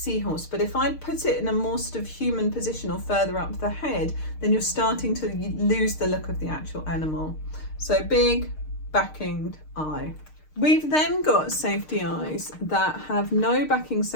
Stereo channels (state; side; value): late; right; 6.6 ms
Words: But if I put it in a more sort of human position or further up the head, then you're starting to lose the look of the actual animal. So big backinged eye. We've then got safety eyes that have no backing